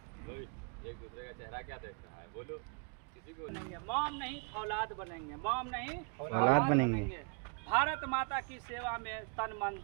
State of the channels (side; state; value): left; quieter; 38.0 dB